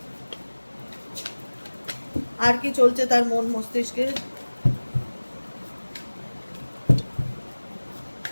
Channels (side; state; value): both; inverted; correlation -1.00